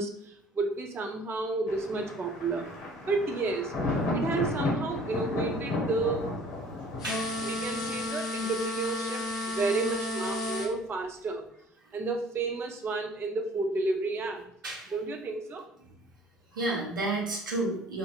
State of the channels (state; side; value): normal; both; correlation 0.52